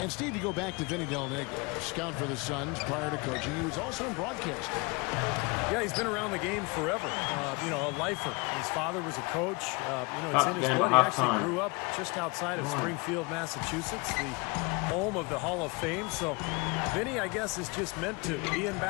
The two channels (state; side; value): quieter; right; 28.0 dB